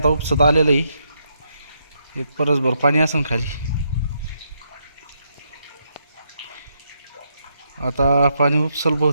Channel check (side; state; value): both; inverted; correlation -0.78